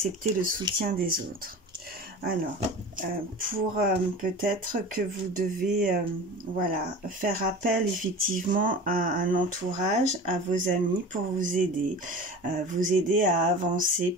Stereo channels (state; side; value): normal; both; correlation 0.35